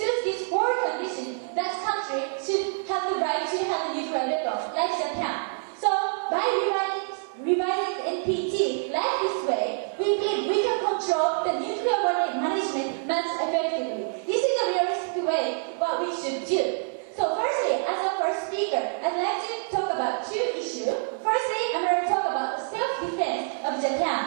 should do. So firstly, as our first speaker, I'd like to talk about two issues. Firstly, I'm going to talk about the self-defense of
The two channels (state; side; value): silent; left; 60 dB below the other